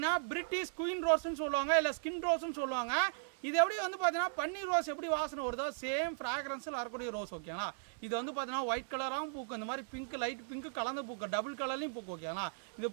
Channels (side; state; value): left; silent; 53 dB below the other